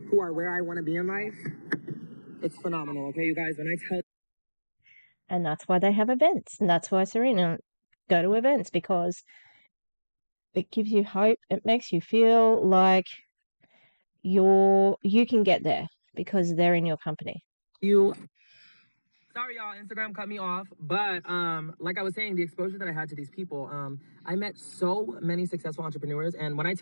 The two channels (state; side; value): inverted; both; correlation -1.00